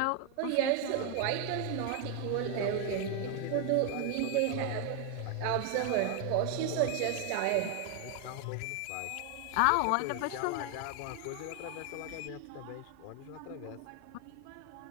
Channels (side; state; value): both; different; correlation 0.01